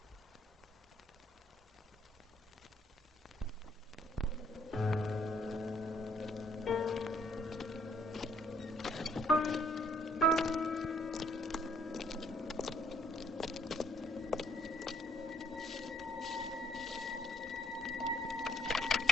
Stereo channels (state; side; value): normal; both; correlation 0.66